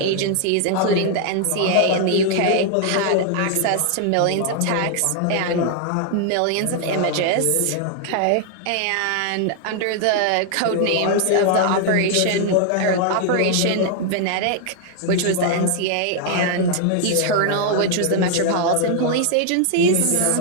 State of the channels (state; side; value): different; both; correlation 0.00